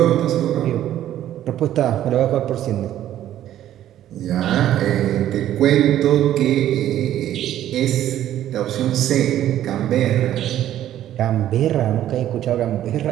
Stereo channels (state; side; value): quieter; left; 12.2 dB